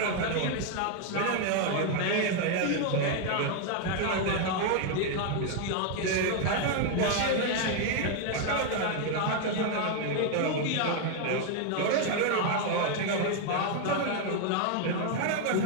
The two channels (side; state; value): both; different; correlation 0.01